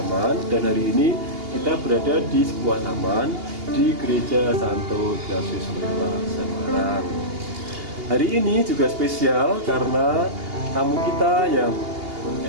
dan hari ini kita berada di sebuah taman di Gereja Santo Ignatius Loyola Semarang. Hari ini juga spesial karena tamu kita yang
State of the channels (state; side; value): late; left; 2.8 ms